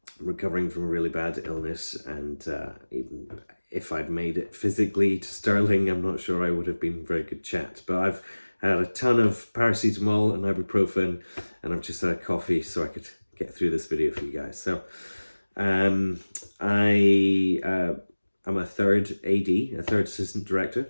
recovering from a really bad illness, and even if I'd made it physically to Stirling, I'm not sure I would have been a very good chat. But I've had a ton of paracetamol and ibuprofen, and I've just had a coffee so I could get through this video for you guys. So um, I'm a third AD, a third assistant director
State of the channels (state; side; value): inverted; both; correlation -1.00